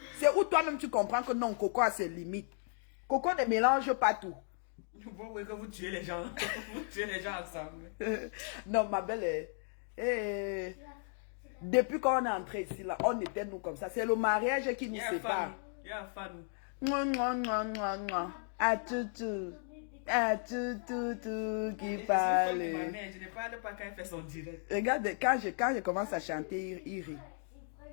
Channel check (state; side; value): silent; right; 54 dB below the other